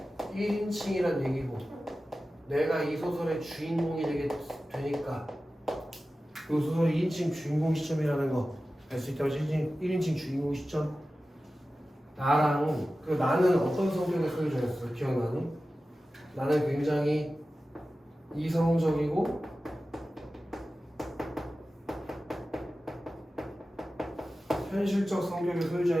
1인칭이란 얘기고, 내가 이 소설의 주인공이 되니까 이 소설의 2인칭 주인공 시점이라는 거 알 수 있다고. 1인칭 주인공 시점. 나랑 그 나는 어떤 성격의 소유자였어? 기억나니? 나는 굉장히 이성적이고 현실적 성격의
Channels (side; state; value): both; normal; correlation 0.95